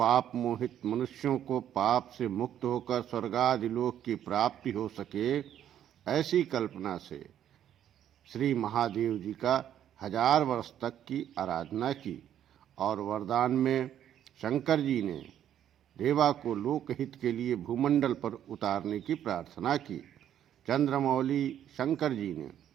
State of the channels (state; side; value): quieter; left; 10.5 dB